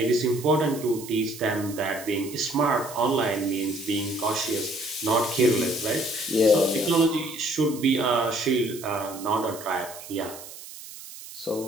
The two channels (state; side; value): noise; right; hiss, 14 dB below the sound